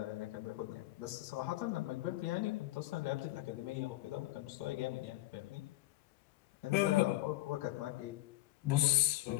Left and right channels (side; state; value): right; quieter; 17.2 dB